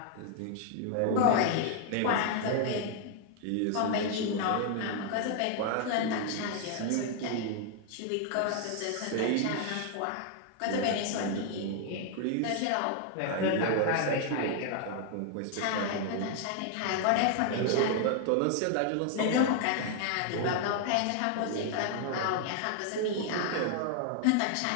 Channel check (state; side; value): different; both; correlation 0.00